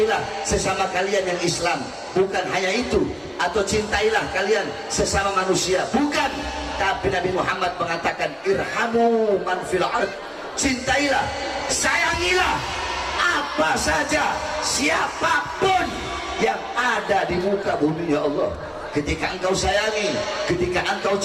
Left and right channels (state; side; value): identical; both; correlation 1.00